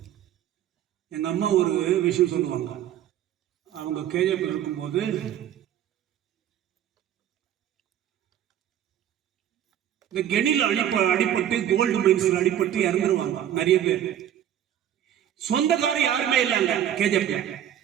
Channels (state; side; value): quieter; left; 10.9 dB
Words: எங்க அம்மா ஒரு விஷயம் சொல்லுவாங்க. அவங்க கேஜிஎஃப் இருக்கும்போது இந்த கெனில அடிபட்டு கோல்டு மைன்ஸ்ல அடிபட்டு இறந்துருவாங்க நிறைய பேர். சொந்தக்காரர் யாருமே இல்லைங்க கேஜிஎஃப்ல.